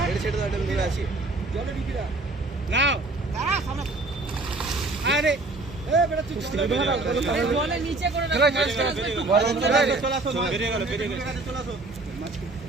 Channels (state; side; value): quieter; left; 3.2 dB